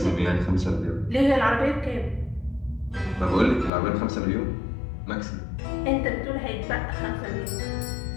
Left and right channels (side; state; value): right; drops out; at 3.7 s